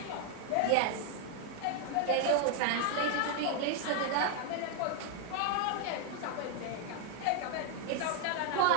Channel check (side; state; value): both; different; correlation 0.00